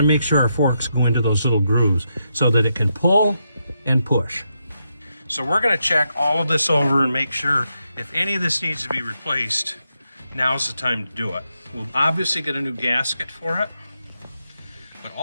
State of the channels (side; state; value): both; inverted; correlation -0.83